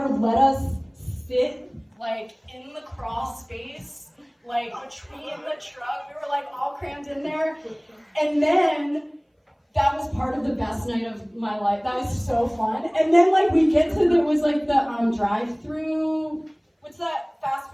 let us sit like in the crawl space, like between the truck. We were like all crammed in there. And then that was part of the best night of my life. That was so fun. And then like we get to there was like the drive-through. What's that fast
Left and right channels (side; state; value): both; identical; correlation 1.00